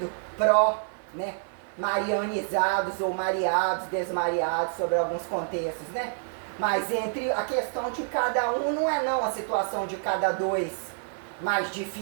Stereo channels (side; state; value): left; silent; 60 dB below the other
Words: né, marianizados ou mareados, desmareados sobre alguns contextos, né? Mas entre a questão de cada um não é não a situação de cada dois mais